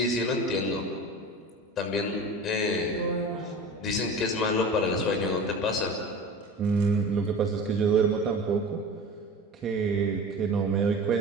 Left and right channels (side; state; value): both; normal; correlation 0.35